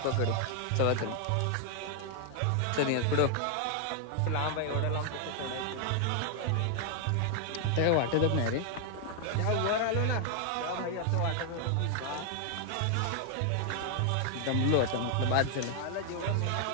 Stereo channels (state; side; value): different; both; correlation 0.00